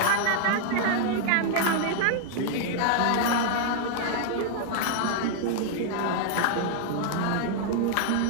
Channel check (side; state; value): both; different; correlation 0.00